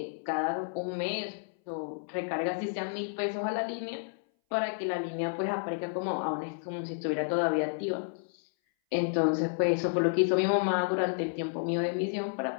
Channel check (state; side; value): silent; right; 57 dB below the other